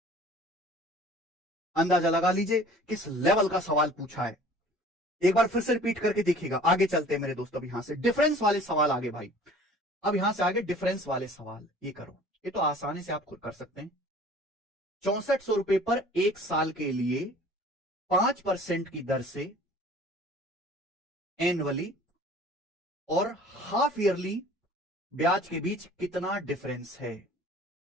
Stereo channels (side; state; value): both; normal; correlation 0.48